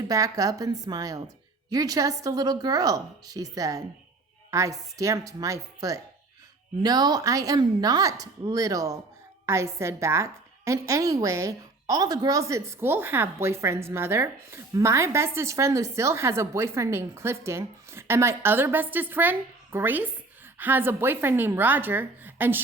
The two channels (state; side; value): quieter; left; 3.3 dB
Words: back up and smiled. You're just a little girl, she said. I stamped my foot. No, I am not little, I said back. And anyway, all the girls at school have boyfriends, Mother. My bestest friend, Lucille, has a boyfriend named Clifton. And my other bestest friend, Grace, has a boyfriend named Roger. And